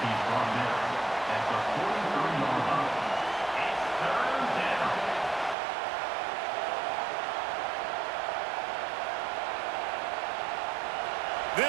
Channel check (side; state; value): left; drops out; at 5.6 s